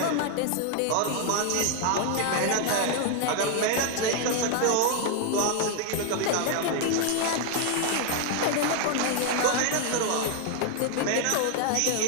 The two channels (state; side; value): different; both; correlation 0.00